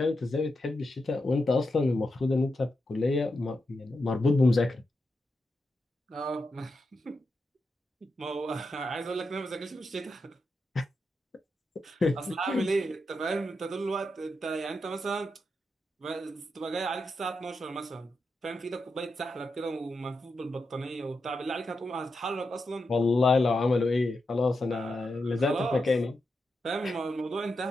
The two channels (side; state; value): both; normal; correlation 0.87